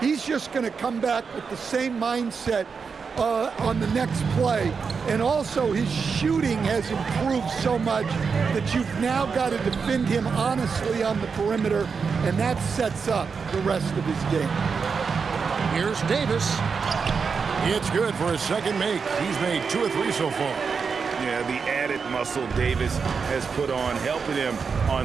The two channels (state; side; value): quieter; left; 5.5 dB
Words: He's just going to come back with the same mindset on the next play. And also his shooting has improved so much that you've now got to defend him honestly on the perimeter, and that sets up the rest of his game. Here's Davis. It's good for his second make. He's made 2 or 3 so far. Yeah, the added muscle Davis has put on, helping him